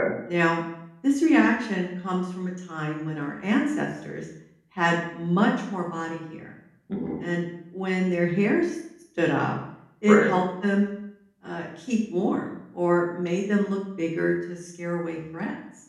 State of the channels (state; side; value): identical; both; correlation 1.00